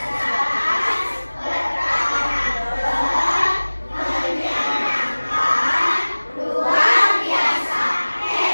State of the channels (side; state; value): both; inverted; correlation -1.00